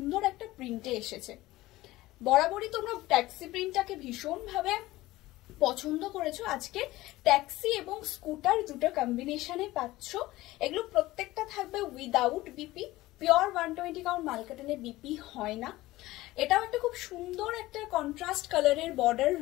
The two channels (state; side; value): quieter; right; 17.9 dB